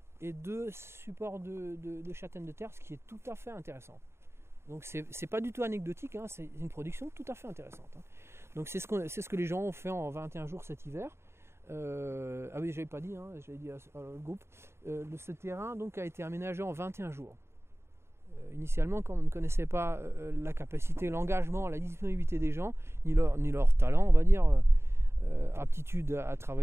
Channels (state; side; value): late; left; 0.12 ms